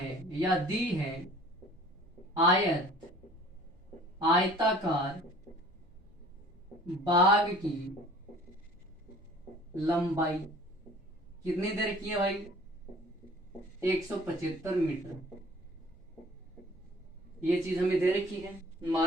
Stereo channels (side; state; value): right; noise; rumble, 29 dB below the sound